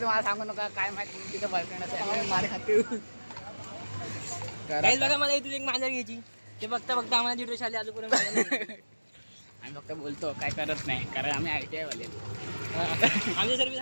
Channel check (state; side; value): inverted; both; correlation -1.00